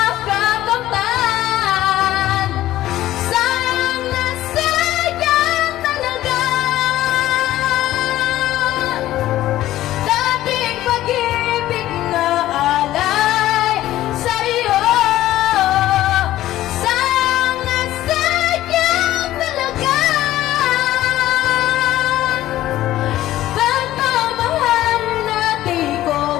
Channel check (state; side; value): quieter; right; 14.5 dB